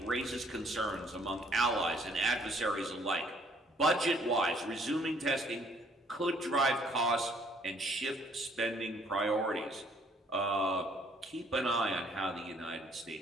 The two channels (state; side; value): normal; both; correlation 0.63